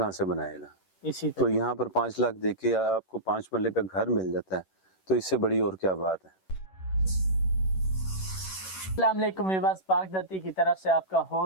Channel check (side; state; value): right; late; 11 ms